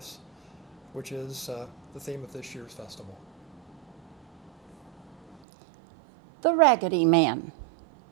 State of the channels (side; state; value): left; drops out; at 5.4 s